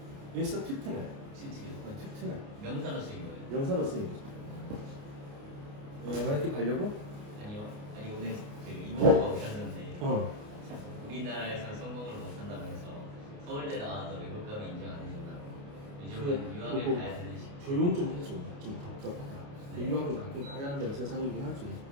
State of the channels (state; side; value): late; left; 29 ms